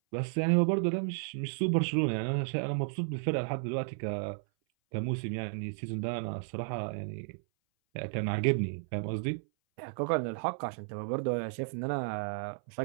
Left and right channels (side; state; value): left; silent; 56 dB below the other